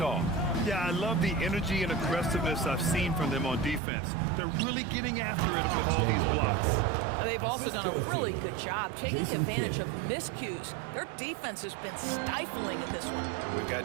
Yeah, I love the energy and aggressiveness I've seen from them on defense. They're really getting after it with all these blocks. And they've also done a really good job taking advantage of miscues. Their defense has been stifling in this one. We've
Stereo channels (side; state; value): left; drops out; at 3.8 s